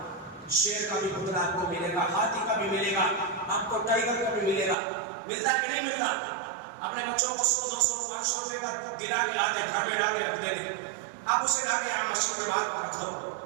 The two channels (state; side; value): drops out; left; at 4.8 s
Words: شیر کا بھی پتلا آپ کو ملے گا، ہاتھی کا بھی ملے گا، آپ کو ٹائگر کا بھی ملے گا، ملتا کہ نہیں ملتا؟ اپنے بچوں کو 100 200 500 روپے کا گرا کے لاتے، گھر میں لا کے رکھ دیتے، آپ اسے لا کے یہاں مسجد کے باہر رکھ دو